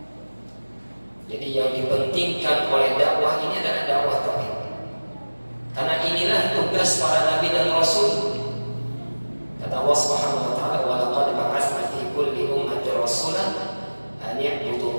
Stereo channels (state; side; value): inverted; both; correlation -1.00